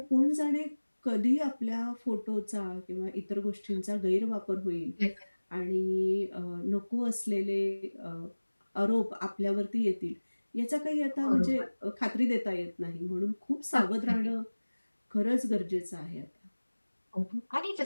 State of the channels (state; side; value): inverted; both; correlation -1.00